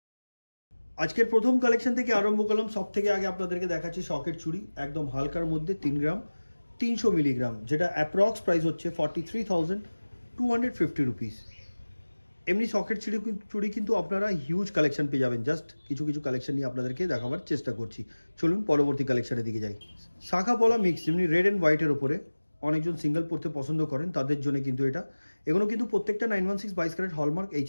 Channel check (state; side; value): inverted; both; correlation -1.00